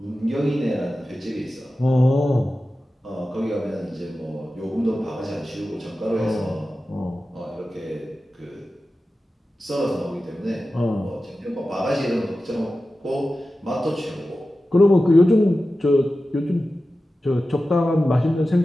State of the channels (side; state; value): both; normal; correlation 0.94